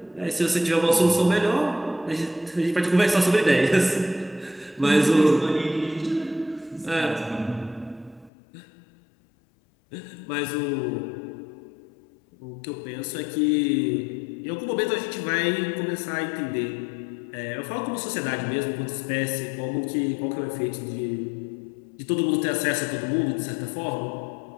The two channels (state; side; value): drops out; right; at 8.3 s